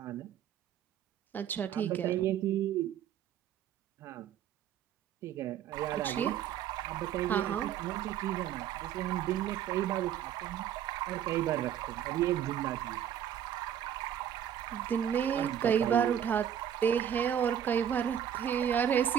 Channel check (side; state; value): left; quieter; 9.6 dB